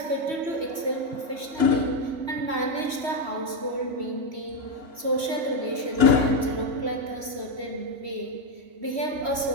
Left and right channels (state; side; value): late; left; 3.1 ms